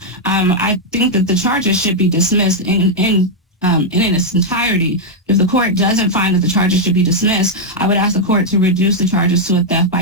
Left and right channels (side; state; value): both; normal; correlation -0.02